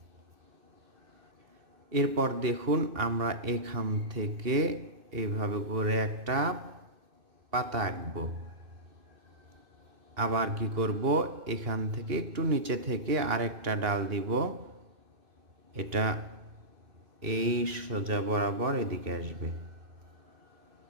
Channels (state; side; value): late; left; 2.6 ms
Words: এরপর দেখুন আমরা এখান থেকে এইভাবে করে একটা পাতা আঁকবো। আবার কি করব, এখান থেকে একটু নিচে থেকে আরেকটা ডাল দিব। এটা এই সোজা বরাবর এদিকে আসবে।